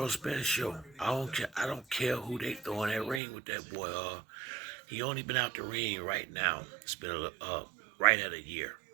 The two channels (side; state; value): left; drops out; at 3.2 s